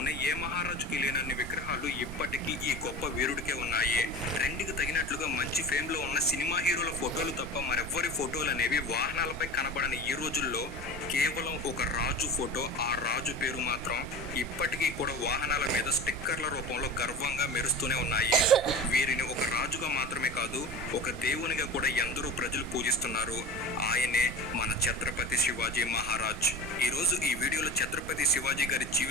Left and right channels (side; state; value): right; noise; rumble, 12 dB below the sound